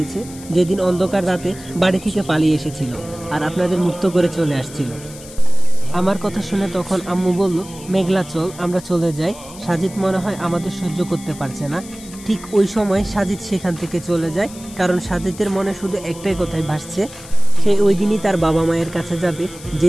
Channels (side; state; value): left; noise; hiss, 17 dB below the sound